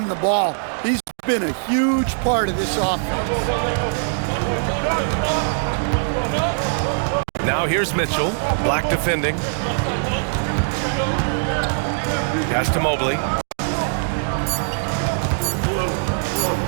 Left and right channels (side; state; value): left; silent; digital silence